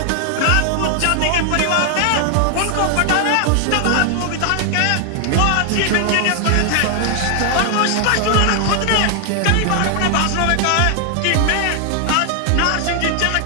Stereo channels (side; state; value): both; different; correlation 0.00